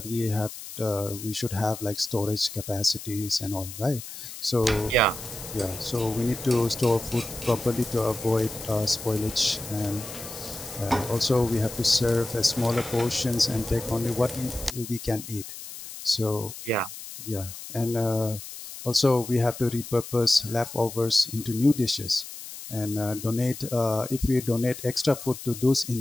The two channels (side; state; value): left; noise; hiss, 12 dB below the sound